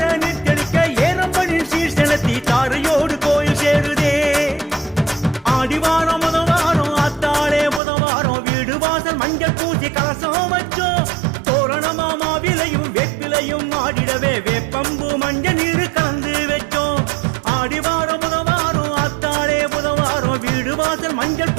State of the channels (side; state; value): left; drops out; at 7.8 s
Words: நீட்டெளிக்க ஏறம்படின் சீர் செலுத்தி தாரையோடு கோயில் சேருதே ஆடிவாரம் முதவாரம் ஆத்தாளே புதவாரம் வீடு வாசல் மஞ்சள் பூசி கலசம் வச்சோம் தோரணமா மாவிலையும் வேப்பிலையும் ஆடிடவே வேப்பம்பு மஞ்சள் நீர் கலந்து வச்சோம் ஆடிவாரம் முதவாரம் ஆத்தாளே புதவாரம் வீடு வாசல் மஞ்சள்